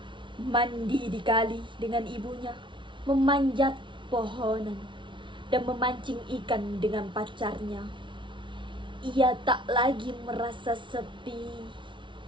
Mandi di kali dengan ibunya, memanjat pohonan dan memancing ikan dengan pacarnya. Ia tak lagi merasa sepi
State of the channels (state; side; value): late; left; 0.24 ms